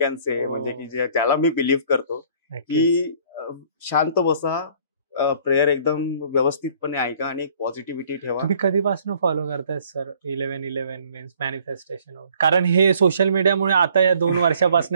say, म्हणजे की ज्याला मी बिलीव्ह करतो की शांत बसा, प्रेयर एकदम व्यवस्थितपणे ऐका आणि पॉझिटिव्हिटी ठेवा. तुम्ही कधीपासून फॉलो करताय सर 11-11 मीन्स मॅनिफेस्टेशन? कारण हे सोशल मीडियामुळे आता या 2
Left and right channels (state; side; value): inverted; both; correlation -0.57